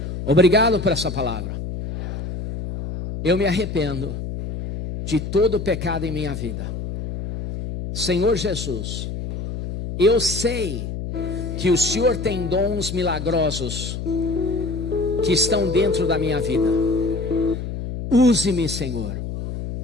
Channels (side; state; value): left; noise; hum, 5 dB below the sound